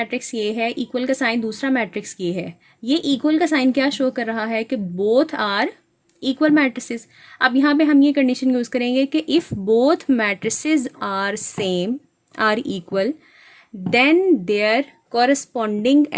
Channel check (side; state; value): both; identical; correlation 1.00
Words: ये है, इक्वल का साइन दूसरा मैट्रिक्स ये है। ये इक्वल का साइन क्या शो कर रहा है कि बोथ आर इक्वल मैट्रिसेस। अब यहाँ पे हम ये कंडीशन यूज़ करेंगे कि if both matrices are same are equal then their corresponding